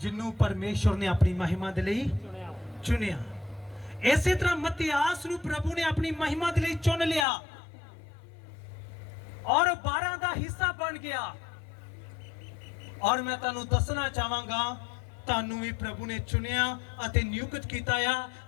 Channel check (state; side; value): drops out; right; at 7.2 s